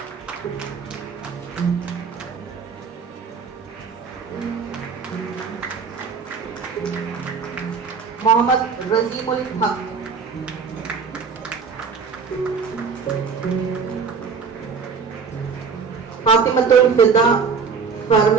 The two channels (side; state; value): left; quieter; 5.6 dB